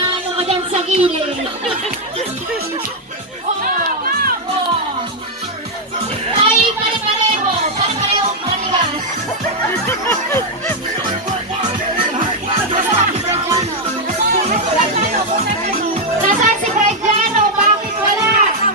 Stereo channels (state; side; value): normal; both; correlation 0.00